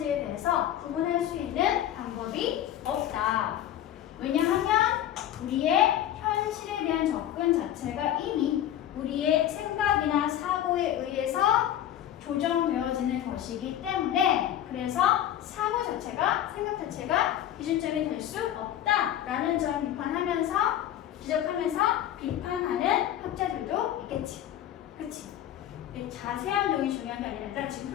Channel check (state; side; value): quieter; right; 11.5 dB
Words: 대해서 구분할 수 있는 방법이 없다. 왜냐하면 우리의 현실에 대한 접근 자체가 이미 우리의 생각이나 사고에 의해서 조정되어지는 것이기 때문에 그래서 사고 자체가 요즘이 될 수 없다라는 점 비판하면서 지적하면서 비판하는 학자들도 있겠지. 그치? 자세한 내용이 중요한 게 아니라 지금